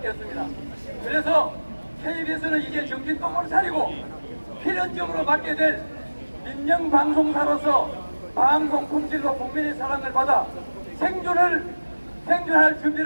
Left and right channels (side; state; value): both; inverted; correlation -1.00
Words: 없습니다. 그래서 KBS는 이제 정신 똑바로 차리고 필연적으로 맡게 될 민영방송사로서 방송 품질로 국민의 사랑을 받아 생존할